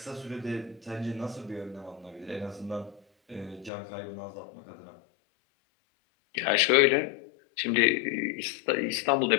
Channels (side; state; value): right; drops out; at 3.7 s